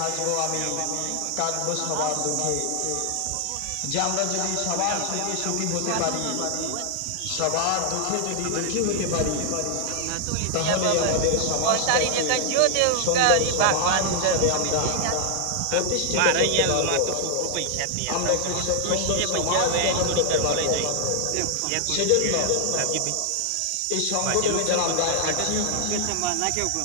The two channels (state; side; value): different; both; correlation 0.00